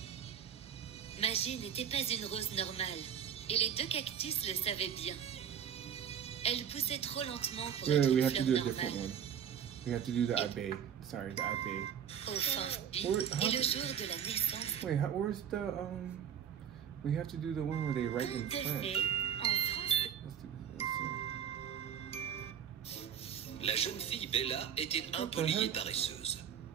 Magie n'était pas une rose normale, et les deux cactus le savaient bien. Elle poussait trop lentement pour être We une have to fleur do a different normale. one. We have to do the abbé. Sorry, the abbé. Enfin, Where- et le jour de la naissance, Wait, where's the We have to do the one where they write in tout à French. fait, en français. Let's La jeune fille Bella était impolie et paresseuse.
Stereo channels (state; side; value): quieter; left; 8.6 dB